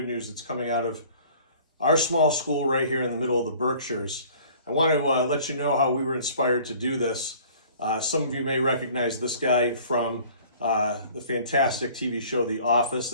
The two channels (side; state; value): both; inverted; correlation -0.51